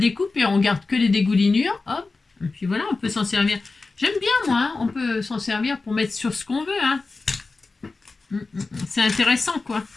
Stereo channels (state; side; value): quieter; right; 3.8 dB